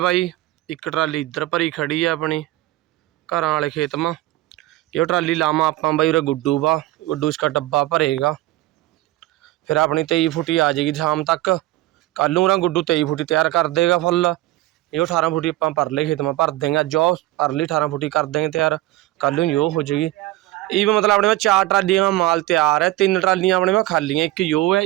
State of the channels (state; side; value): quieter; left; 17.0 dB